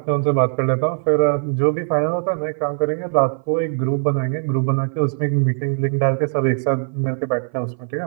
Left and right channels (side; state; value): left; silent; 56 dB below the other